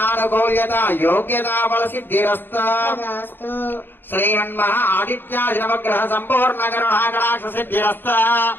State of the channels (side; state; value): right; late; 0.098 ms